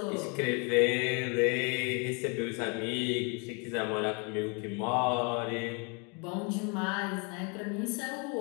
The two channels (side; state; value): right; quieter; 34.1 dB